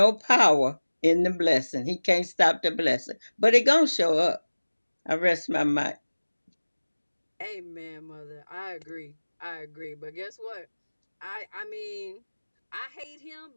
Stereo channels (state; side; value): inverted; both; correlation -1.00